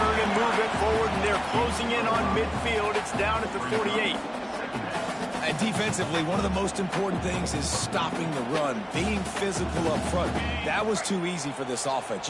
and move it forward, and they're closing in on midfield. It's down at the 48. And defensively, one of the most important things is stopping the run, being physical up front. That was too easy for this offense.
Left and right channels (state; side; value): identical; both; correlation 1.00